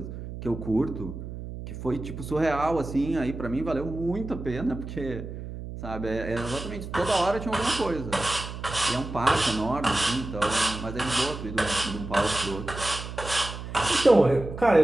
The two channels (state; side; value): noise; right; hum, 9 dB below the sound